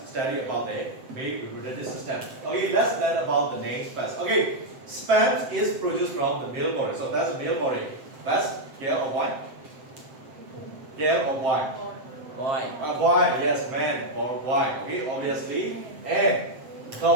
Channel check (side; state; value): left; late; 7.7 ms